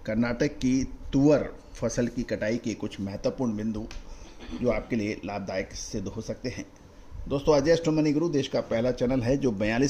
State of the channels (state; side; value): identical; both; correlation 1.00